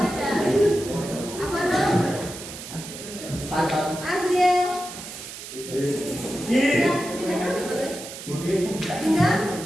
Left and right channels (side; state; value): right; noise; hiss, 12 dB below the sound